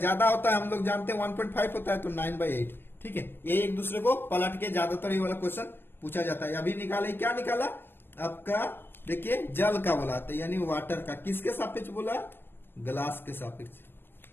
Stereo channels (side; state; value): right; late; 0.10 ms